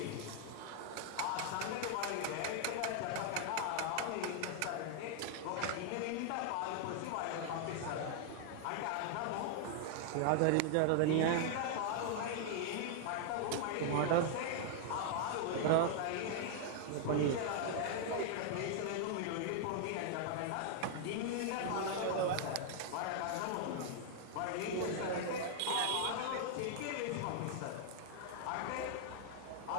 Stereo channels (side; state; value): both; different; correlation 0.00